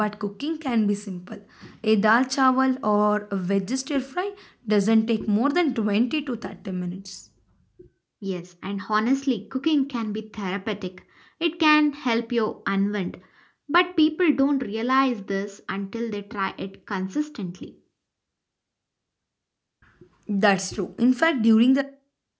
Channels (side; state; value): both; identical; correlation 1.00